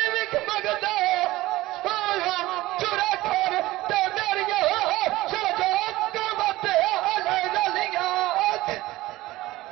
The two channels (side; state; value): left; quieter; 18.0 dB